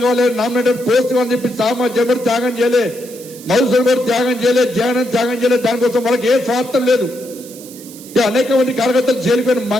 కావాలి, నామినేటెడ్ పోస్ట్ కావాలని చెప్పి జగన్ త్యాగం చేయలే. మధుసూదన్ కూడా త్యాగం చేయలేదు, త్యాగం చేయలేదు. దానికోసం వాళ్ళకి ఏ స్వార్థం లేదు. అనేక మంది కార్యకర్తలు జైలుకోని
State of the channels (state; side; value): noise; right; hiss, 18 dB below the sound